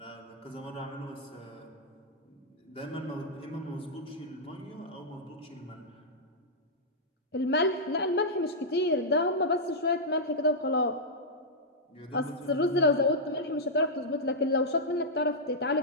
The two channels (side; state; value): both; normal; correlation -0.08